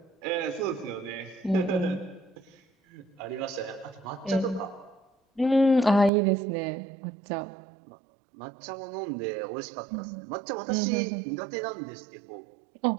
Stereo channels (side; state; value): left; drops out; at 6.1 s